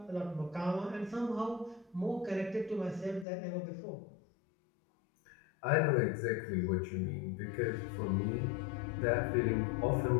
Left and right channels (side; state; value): right; drops out; at 3.2 s